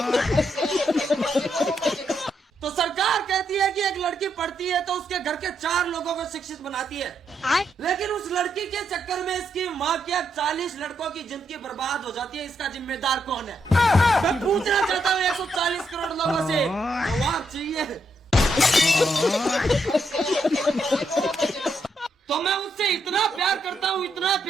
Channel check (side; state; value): both; normal; correlation 0.79